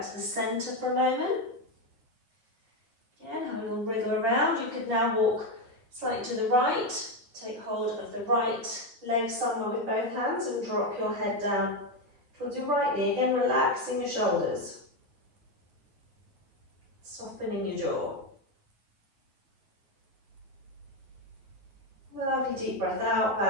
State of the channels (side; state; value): left; late; 9.9 ms